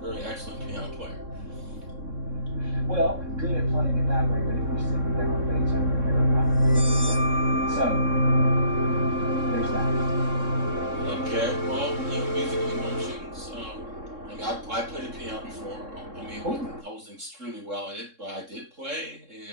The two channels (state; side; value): late; left; 3.6 ms